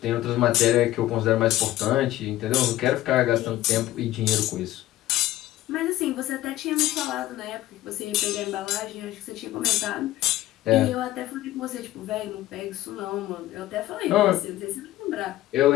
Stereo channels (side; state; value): right; quieter; 15.2 dB